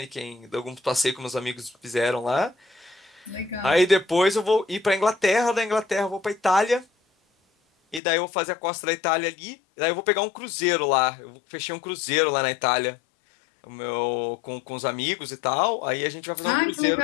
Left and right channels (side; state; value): right; drops out; at 8.0 s